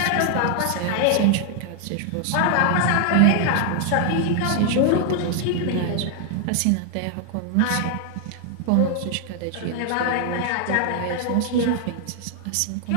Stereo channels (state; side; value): different; both; correlation 0.00